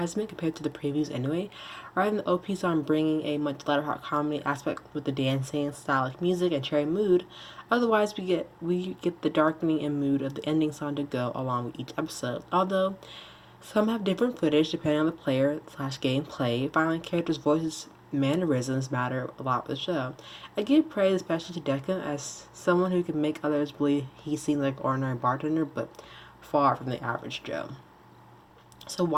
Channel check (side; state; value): both; identical; correlation 1.00